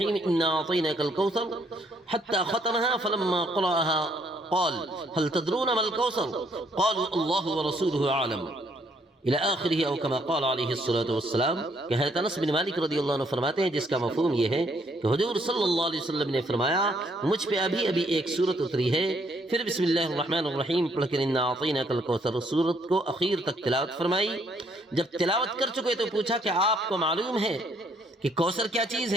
إنا أعطيناك الكوثر حتى ختمها فلما قرأها قال هل تدرون ما الكوثر قالوا الله ورسوله أعلم الى آخرہ، او کما قال علیہ الصلوۃ والسلام، کہ حضرت انس بن مالک رضی اللہ عنہ فرماتے ہیں جس کا مفہوم یہ ہے کہ حضور صلی اللہ علیہ وسلم نے فرمایا مجھ پہ ابھی ایک سورت اتری ہے، پھر بسم اللہ الرحمن الرحیم پڑھ کر انا اعطیناک الکوثر سورت کو اخیر تک تلاوت فرمائی۔ جب تلاوت کر چکے تو پوچھا کہ آپ کو معلوم ہے کہ کوثر کیا چیز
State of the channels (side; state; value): both; normal; correlation 0.68